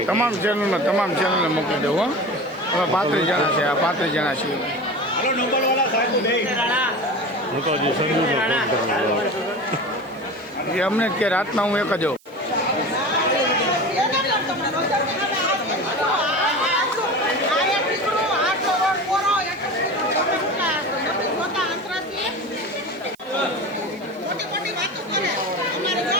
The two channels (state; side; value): noise; right; hiss, 30 dB below the sound